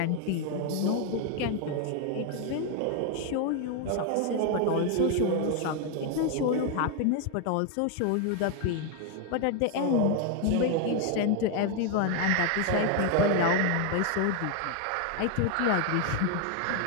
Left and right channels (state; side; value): different; both; correlation 0.01